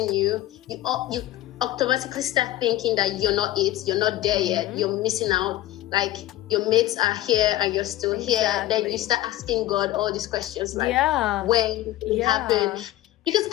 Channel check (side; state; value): right; quieter; 15.2 dB